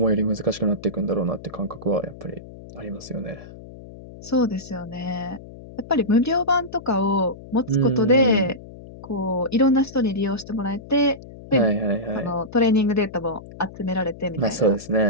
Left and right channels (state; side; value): noise; left; hum, 16 dB below the sound